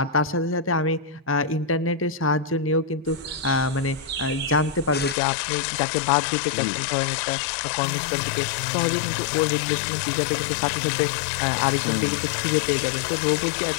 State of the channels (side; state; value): right; drops out; at 5.2 s